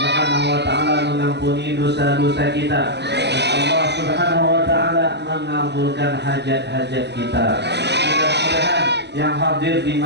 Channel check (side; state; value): left; late; 0.50 ms